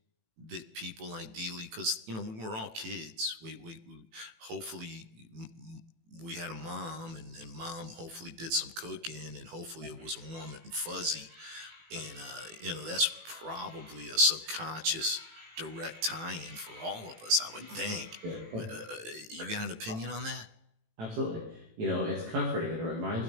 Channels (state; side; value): late; left; 18 ms